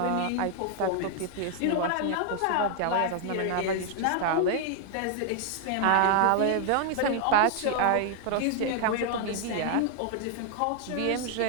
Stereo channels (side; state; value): both; different; correlation 0.00